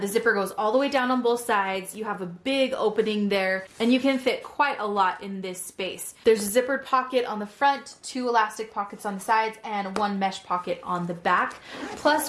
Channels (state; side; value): identical; both; correlation 1.00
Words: the zipper goes all the way down on both sides. You have a big opening there, and you can fit quite a lot in this space. There's a zippered pocket on the front, two elastic pockets on the sides, and one mesh pocket on the back. Plus,